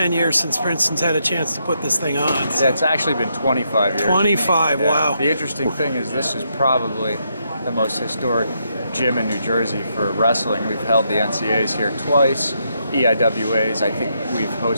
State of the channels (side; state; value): both; inverted; correlation -0.79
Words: years since Princeton's had a chance to put this thing on. Yeah, it's actually been 25 years. 25, yeah. Wow. The interesting thing is this is probably the most historic gym in New Jersey for wrestling. We've held the NCAAs here twice. EIWAs, I think we've